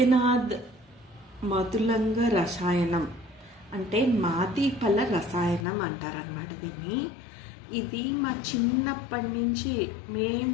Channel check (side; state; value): right; drops out; at 5.7 s